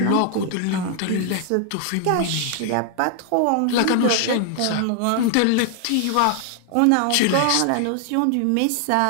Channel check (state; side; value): different; both; correlation 0.00